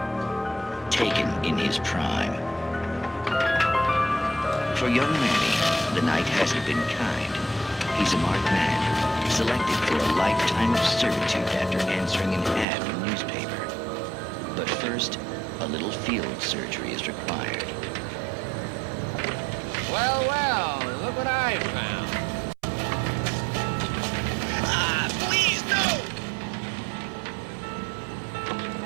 taken in his prime. For young Manny, the night hasn't been kind. He's a marked man, selected for a lifetime of servitude after answering an ad in the newspaper. But first, a little field surgery is required. Well, well, look what I found. Ah, please, no!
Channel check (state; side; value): drops out; left; at 12.7 s